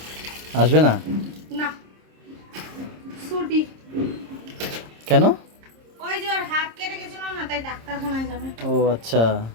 আসবে না? না ছুটি। কেন? ওই যে ওর হাত কেটে গেছিল না, তাই ডাক্তারখানায় যাবে। ও আচ্ছা,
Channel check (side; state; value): left; late; 26 ms